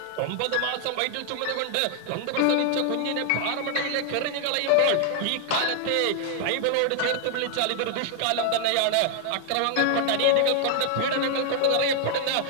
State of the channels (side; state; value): both; different; correlation 0.00